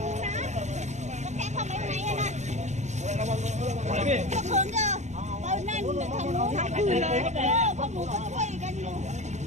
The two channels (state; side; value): late; left; 0.33 ms